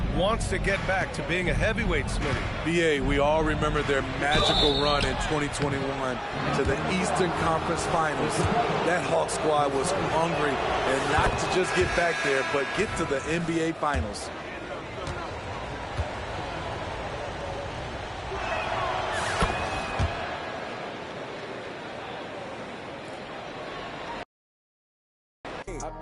wants to get back to being a heavyweight, Smitty. B.A., we all remember their magical run in 2021 to the Eastern Conference Finals. That Hawk squad was hungry, and not to just get back there, but get to the NBA Finals. I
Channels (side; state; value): both; identical; correlation 1.00